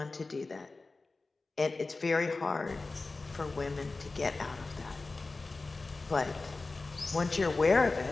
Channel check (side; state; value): right; quieter; 3.6 dB